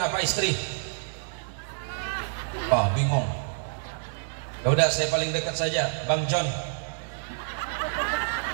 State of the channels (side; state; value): left; silent; 59 dB below the other